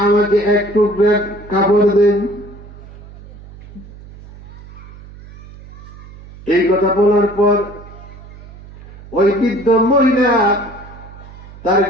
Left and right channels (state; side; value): noise; right; hum, 18 dB below the sound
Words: আমাকে এক টুকরা কাপড় দেন। এই কথা বলার পর ওই বৃদ্ধ মহিলা তার